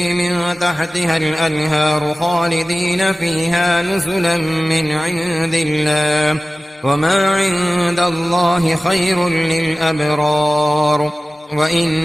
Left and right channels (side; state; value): both; normal; correlation 0.96